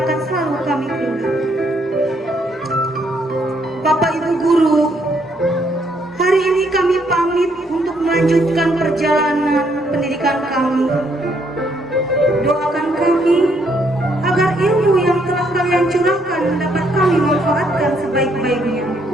akan selalu kami ingat. Bapak Ibu guru, hari ini kami pamit untuk melanjutkan perjalanan pendidikan kami. Doakan kami agar ilmu yang telah kalian curahkan dapat kami manfaatkan sebaik-baiknya.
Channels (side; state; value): both; normal; correlation 0.71